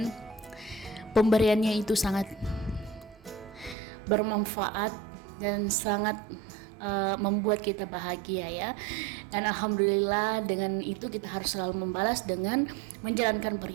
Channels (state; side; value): drops out; left; at 3.8 s